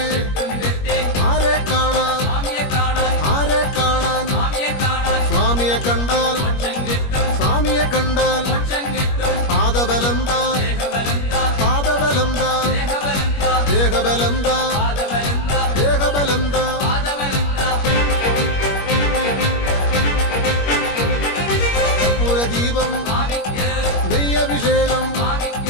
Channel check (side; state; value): right; late; 21 ms